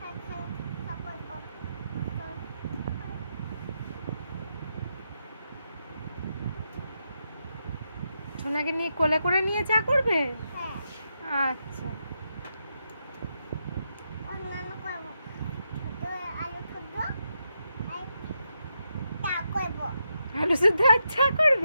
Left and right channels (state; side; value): inverted; both; correlation -0.83